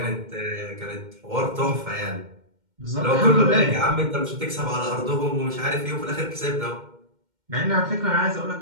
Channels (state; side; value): late; left; 2.1 ms